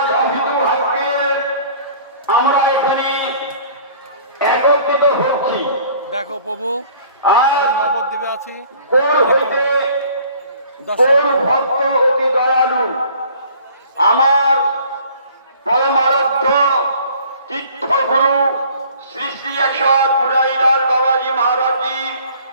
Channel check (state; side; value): inverted; both; correlation -0.52